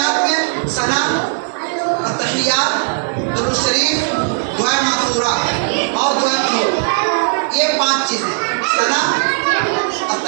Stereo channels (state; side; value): silent; left; 59 dB below the other